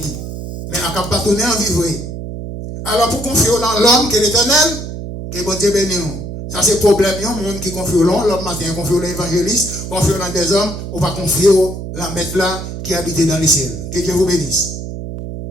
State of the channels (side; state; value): right; noise; hum, 8 dB below the sound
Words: Mais Akab pas tourner en vie, oui. Alors pour confier dans l'homme qui est l'éternel, que bon Dieu bénisse. Ça c'est le problème, il y a un monde qui confie l'homme matin, confie l'évangéliste, confie dans des hommes, ou pas confier la maître là qui habite dans les ciels. Que Dieu vous bénisse.